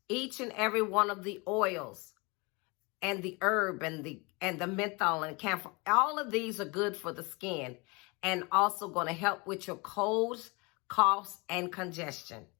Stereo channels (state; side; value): quieter; right; 27.7 dB